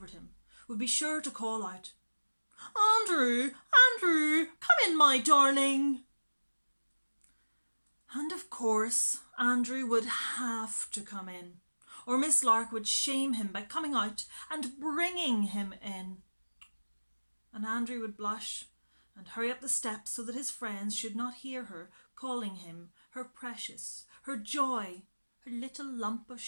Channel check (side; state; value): both; inverted; correlation -1.00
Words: him, would be sure to call out, "Andrew, Andrew, come in, my darling." And of course, Andrew would have to come in, or Miss Lark would shame him by coming out and bringing him in. And Andrew would blush and hurry up the steps so that his friends should not hear her calling him her precious, her joy, her little lump of